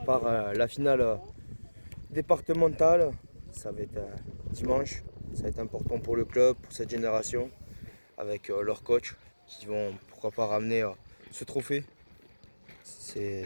la finale départementale. Ça va être dimanche. Ça va être important pour le club, pour cette génération, avec leur coach qui vont pourquoi pas ramener ce trophée.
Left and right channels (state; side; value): inverted; both; correlation -1.00